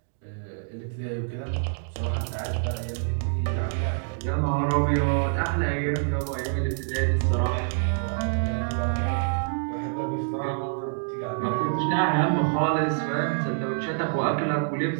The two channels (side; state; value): left; silent; digital silence